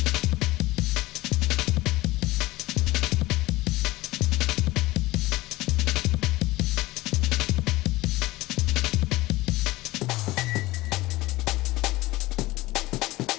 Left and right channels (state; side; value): quieter; right; 19.1 dB